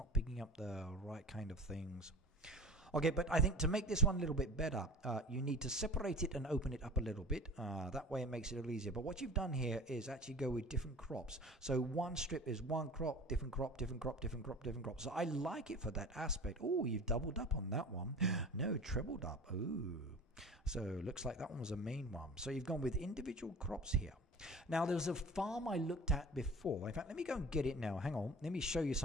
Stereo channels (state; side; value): normal; both; correlation 0.38